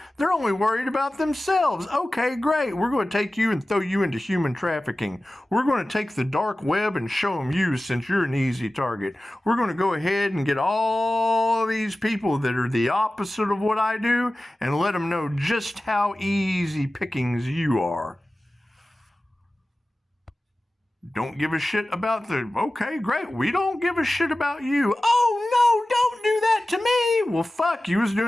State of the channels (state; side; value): normal; both; correlation 0.96